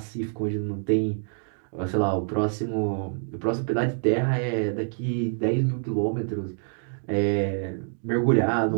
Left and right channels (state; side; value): silent; left; digital silence